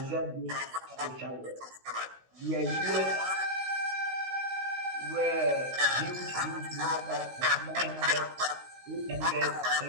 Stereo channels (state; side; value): late; left; 16 ms